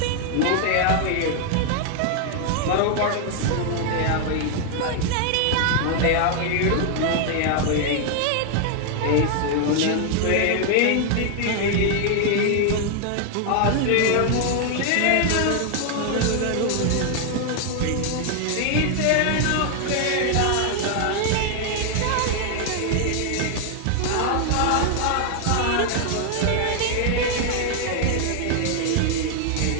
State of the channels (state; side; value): different; both; correlation 0.00